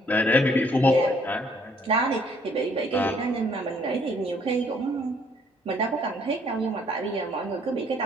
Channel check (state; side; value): normal; both; correlation 0.64